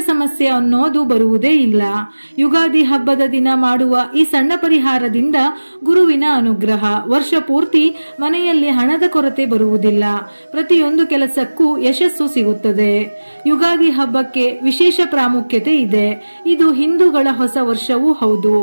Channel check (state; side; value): inverted; both; correlation -1.00